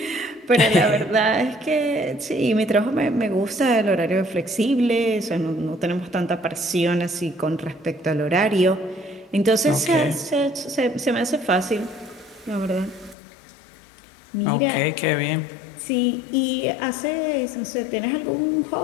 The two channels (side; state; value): right; drops out; at 13.2 s